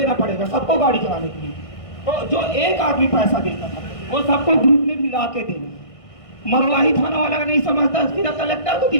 पड़ेगा सबको गाड़ी चलाने के लिए। तो जो एक आदमी पैसा देता था वो सबको ग्रुप में मिला के देना। मरवाही थाना वाला का नहीं समझता, सीधा कलेक्टर को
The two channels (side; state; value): right; late; 1.6 ms